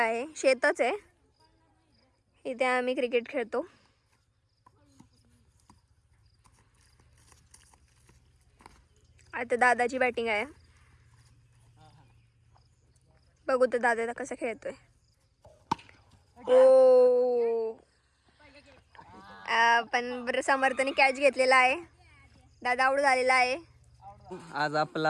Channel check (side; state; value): both; identical; correlation 1.00